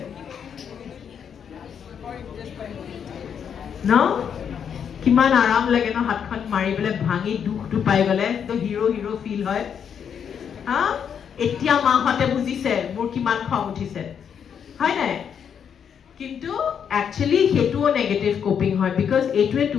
ন কিমান আৰাম লাগে ন হাতখন মাৰি পেলাই ভাঙি দুখটো পাই গলে তো হিৰো ফিল হয় হা এতিয়া মাহঁতে বুজিছে মোৰ কিমান খং উঠিছে হয় নাই কিন্তু একচুয়ালি হেতুও নেগেটিভ কোপিং হয় বিকজ এইটোৱে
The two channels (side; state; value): right; quieter; 7.8 dB